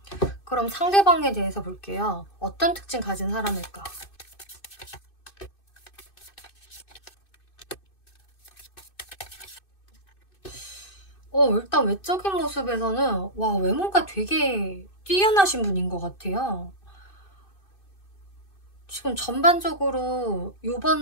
그럼 상대방에 대해서 볼게요. 어떤 특징 가진 사람일까? 일단 외적인 모습에서는 외모가 되게 뛰어나신 분인 것 같아요. 지금 전반적으로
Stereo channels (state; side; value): late; right; 2.6 ms